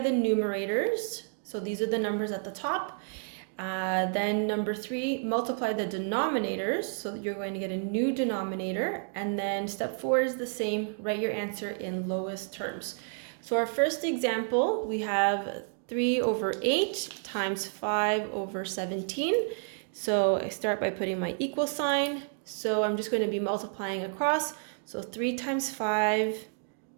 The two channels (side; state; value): left; silent; 58 dB below the other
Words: numerators. So these are the numbers at the top. Then number 3, multiply the denominators. So you're going to get a new denominator. And then step 4 is the same. Write your answer in lowest terms. So our first example, we have 3 over 8 times 5 over 17. So I start by putting my equal sign. So I'm just going to be multiplying across. So 3 times 5